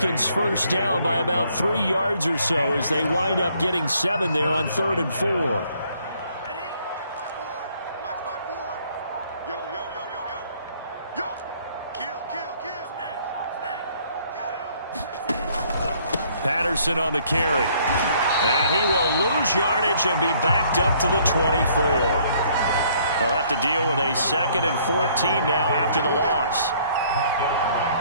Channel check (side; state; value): both; inverted; correlation -0.63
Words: first down by about 3 yards or so as they wind up getting 7 there on 3rd and 4. Patterson on the carry. And he will lose yardage and be backed up to the 24. They'll have to deal with a 2nd and 14 now after the loss.